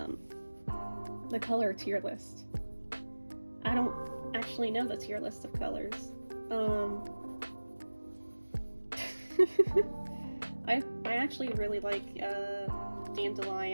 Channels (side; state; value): both; inverted; correlation -1.00